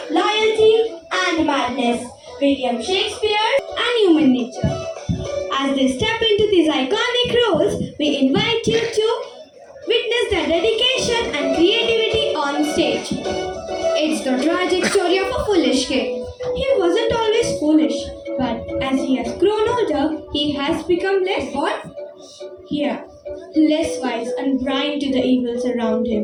loyalty, and madness. William Shakespeare and human nature. As they step into these iconic roles, we invite you to witness their dedication and creativity on stage. It's the tragic story of a foolish king. He wasn't always foolish, but as he has grown older, he has become less what? Here, less wise and blind to the evils around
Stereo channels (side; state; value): both; identical; correlation 1.00